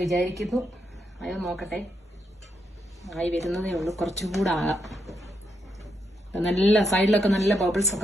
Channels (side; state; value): both; normal; correlation 0.81